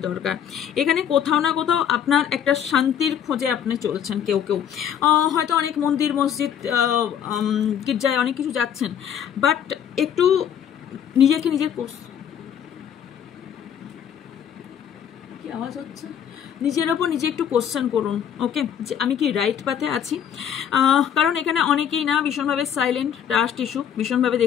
দরকার। এখানে কোথাও না কোথাও আপনার একটা শান্তির খোঁজে আপনি চলছেন, কেউ হয়তো অনেক মন্দির মসজিদ গির্জায় অনেক কিছু যাচ্ছেন, বাট একটু নিজেকে কি আওয়াজ হচ্ছে, নিজের ওপর নিজে একটু কোশ্চেন করুন। ওকে, যে আমি কি রাইট পাথে আছি? কারণ এখানে অনেকেই না ভীষণভাবে সাইলেন্ট, ট্রাস্ট ইস্যু ভীষণভাবে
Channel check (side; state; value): right; quieter; 9.0 dB